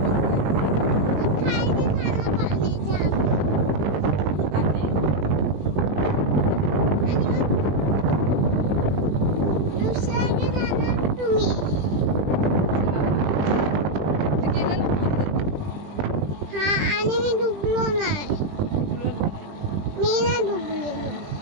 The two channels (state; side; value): late; left; 20 ms